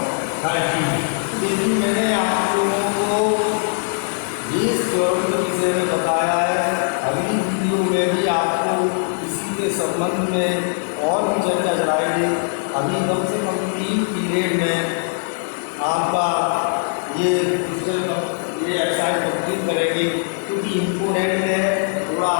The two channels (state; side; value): silent; right; 65 dB below the other